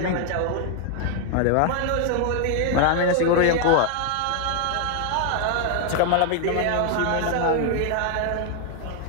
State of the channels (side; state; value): both; different; correlation 0.00